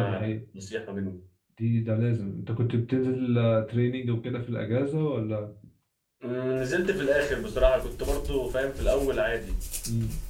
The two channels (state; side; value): identical; both; correlation 1.00